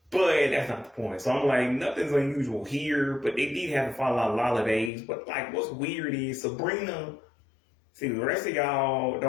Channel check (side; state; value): right; drops out; at 4.9 s